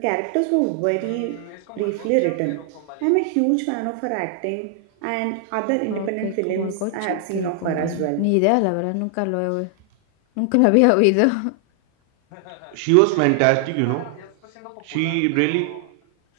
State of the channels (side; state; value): both; different; correlation 0.00